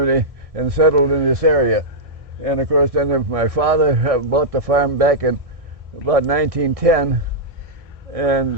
and settled in this area. And of course, then my father bought the farm back in about 1910,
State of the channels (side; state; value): left; late; 1.6 ms